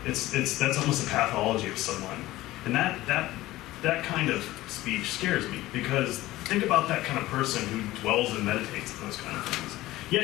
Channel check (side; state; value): right; quieter; 17.0 dB